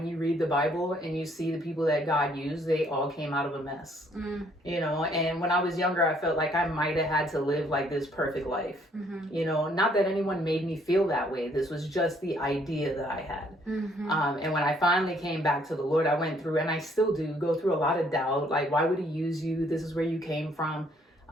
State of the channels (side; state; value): both; normal; correlation 0.65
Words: you read the Bible and you see the people that God used, they all came out of a mess, and when I was younger, I felt like I might have had to live like this perfect life, not that anyone made me feel that way. This was just the idea that I had. And when I finally came back to the Lord, I went through, and I still do go through a lot of doubt. Like, why would he use you? This is where you came from.